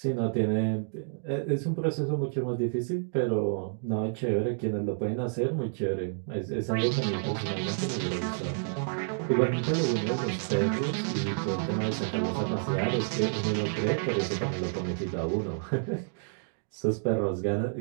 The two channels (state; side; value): silent; left; digital silence